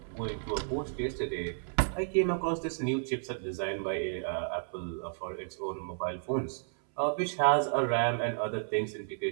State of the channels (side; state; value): left; silent; 56 dB below the other